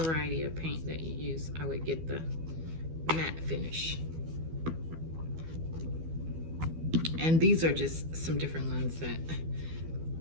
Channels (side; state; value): left; late; 12 ms